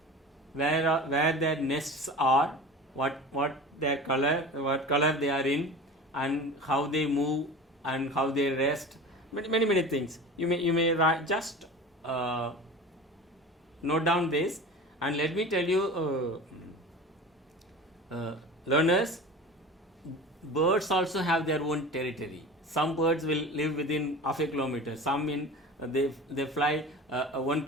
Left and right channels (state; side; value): normal; both; correlation 0.35